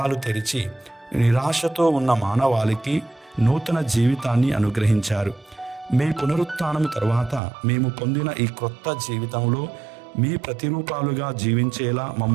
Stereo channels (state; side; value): drops out; left; at 7.4 s